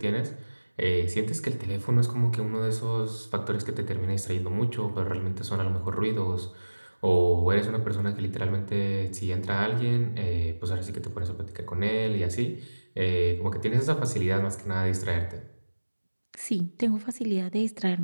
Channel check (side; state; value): both; inverted; correlation -1.00